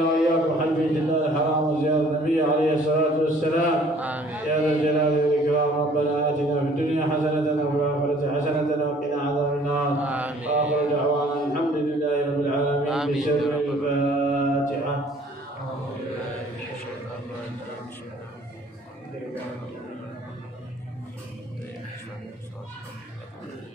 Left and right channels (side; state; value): both; normal; correlation 0.56